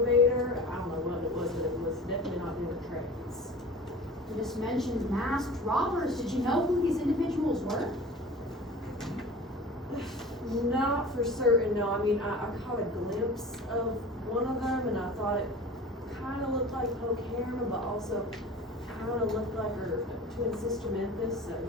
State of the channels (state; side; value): normal; both; correlation 0.38